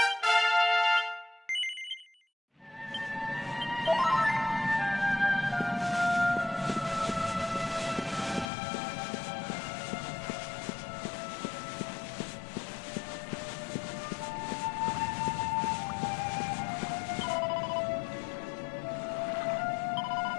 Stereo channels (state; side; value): drops out; right; at 8.5 s